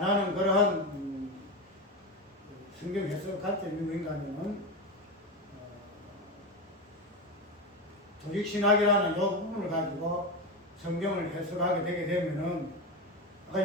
그러한 성경 해석 관점이 뭔가 하면은 조직신학이라는 이 부분을 가지고 성경을 해석하게 되게 되면은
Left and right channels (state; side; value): normal; both; correlation 0.16